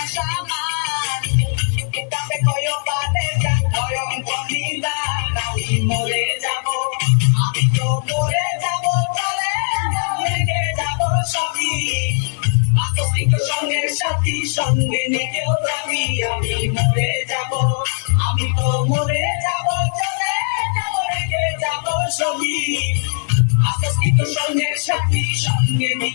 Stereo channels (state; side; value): silent; right; 66 dB below the other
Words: সামান কিতাবে কয়ো বাদে মরে যাব আমি তো মরে যাব চলে রেখে যাব সবই আসক্ত সঙ্গের সাথী সঙ্গে নিকেও যাবি আমি মরে যাব আমি তো মরে যাব চলে যাব রেখে যাব সবই আসক্ত সঙ্গের সাথী সঙ্গে